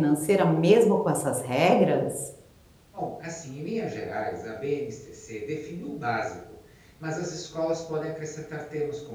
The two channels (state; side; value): identical; both; correlation 1.00